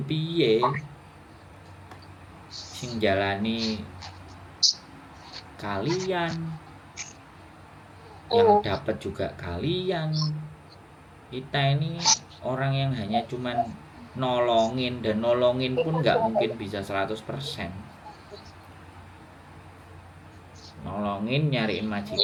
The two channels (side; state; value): both; identical; correlation 1.00